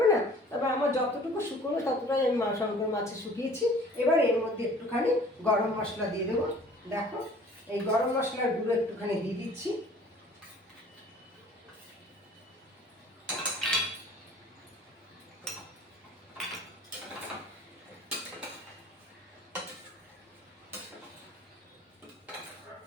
না। তবে আমার যতটুকু শুকনো ততটাই আমি শঙ্কর মাছে শুকিয়েছি। এবার এর মধ্যে একটুখানি গরম মশলা দিয়ে দেবো। দেখো এই গরম মশলার গুঁড়ো একটুখানি দিয়ে দিচ্ছি।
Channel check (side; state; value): both; normal; correlation 0.50